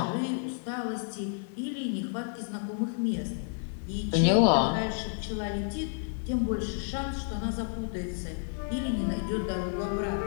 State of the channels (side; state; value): right; silent; 57 dB below the other